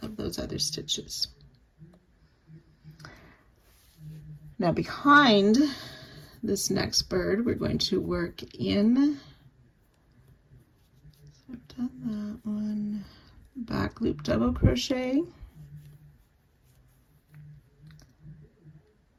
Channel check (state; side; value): identical; both; correlation 1.00